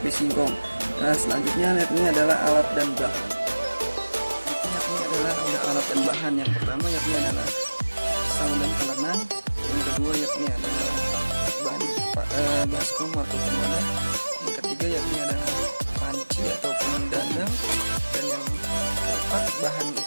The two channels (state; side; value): inverted; both; correlation -1.00